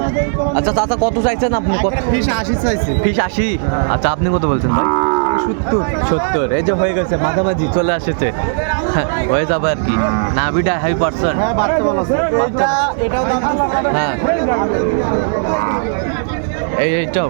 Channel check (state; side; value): silent; left; digital silence